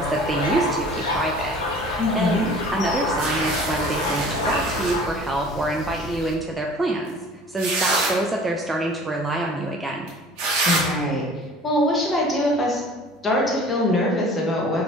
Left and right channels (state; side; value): normal; both; correlation 0.46